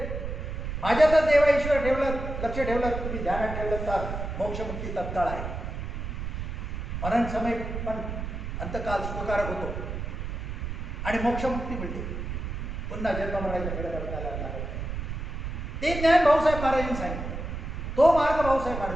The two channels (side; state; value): right; noise; rumble, 5 dB below the sound